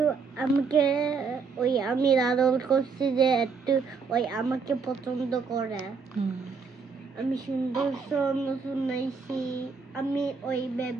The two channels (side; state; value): left; quieter; 5.2 dB